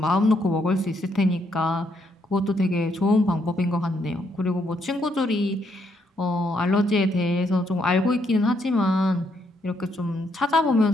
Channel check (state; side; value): normal; both; correlation 0.74